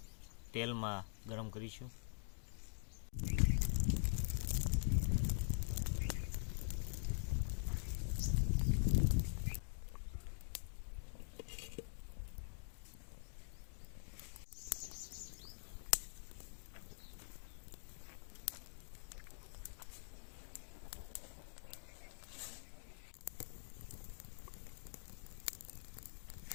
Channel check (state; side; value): silent; right; digital silence